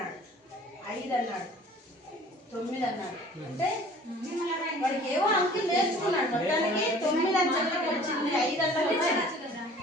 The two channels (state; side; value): normal; both; correlation 0.49